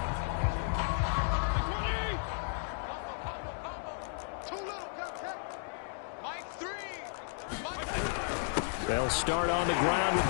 They'll start on the ground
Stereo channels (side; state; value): right; silent; digital silence